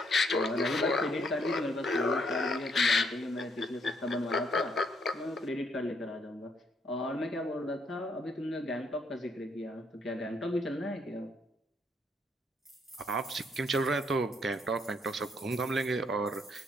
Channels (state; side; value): normal; both; correlation 0.71